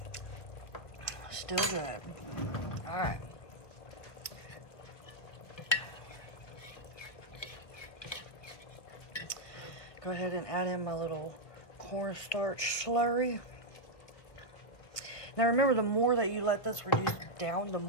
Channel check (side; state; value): right; late; 1.9 ms